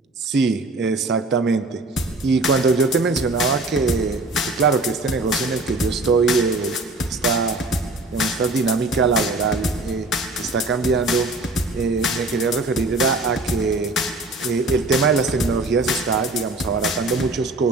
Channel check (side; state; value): left; quieter; 3.0 dB